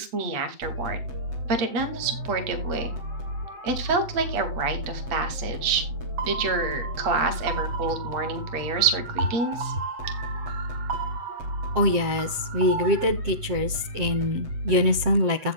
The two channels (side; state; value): left; late; 8.0 ms